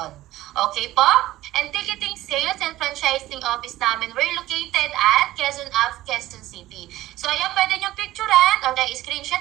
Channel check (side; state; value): left; quieter; 15.7 dB